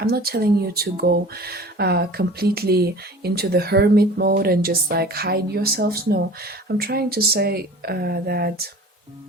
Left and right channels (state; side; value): normal; both; correlation 0.42